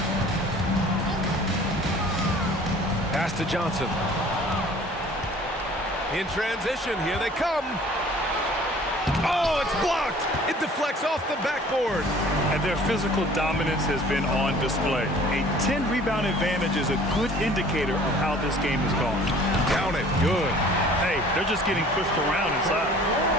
Pass to Johnson. In transition, here they come. Oh, it's blocked. It deflects off the backboard. And their physical dominance has been on display. A 10-rebound advantage is a good indicator of how this game has gone. Down it. Good. Hey, they're just getting pushed around inside.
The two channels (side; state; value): both; normal; correlation 0.50